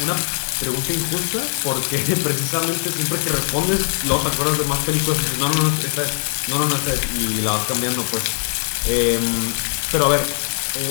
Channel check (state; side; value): silent; right; digital silence